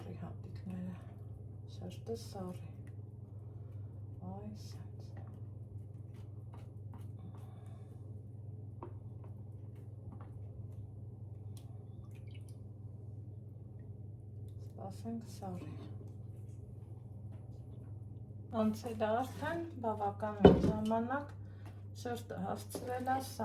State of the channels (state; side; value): identical; both; correlation 1.00